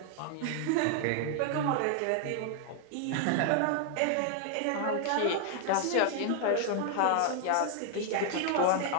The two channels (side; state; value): both; different; correlation 0.00